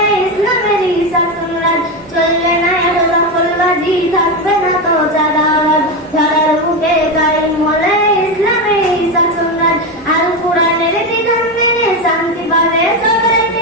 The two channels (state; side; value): normal; both; correlation 0.14